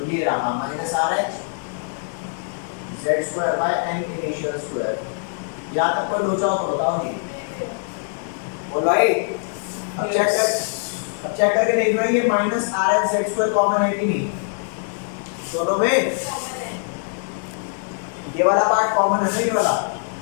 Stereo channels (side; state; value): right; silent; digital silence